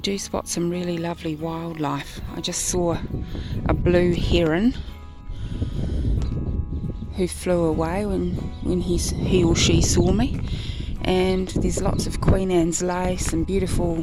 spot some really lovely wildlife. I just saw a blue heron who flew away when he or she saw me. And there's lots of Queen Anne's lace and beautiful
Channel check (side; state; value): both; identical; correlation 1.00